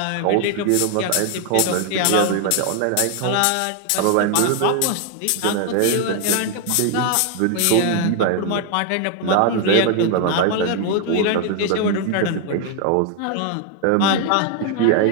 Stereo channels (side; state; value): both; different; correlation 0.00